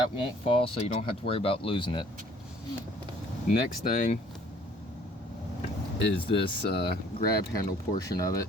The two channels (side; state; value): both; normal; correlation 0.57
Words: won't fall, so you don't have to worry about losing it. Next thing is this grab handle portion of it.